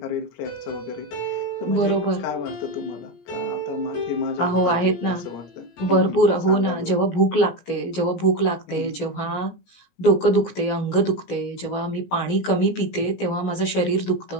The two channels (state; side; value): late; right; 17 ms